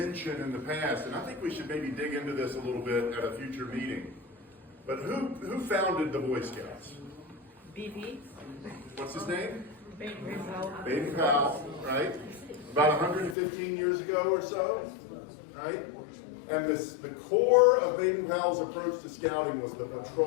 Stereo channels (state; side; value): drops out; right; at 13.4 s